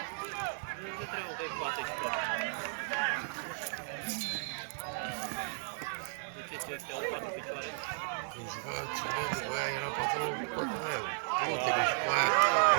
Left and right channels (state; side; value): silent; left; digital silence